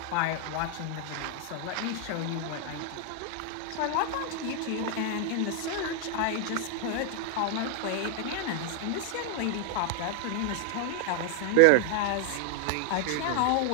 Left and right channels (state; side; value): different; both; correlation 0.00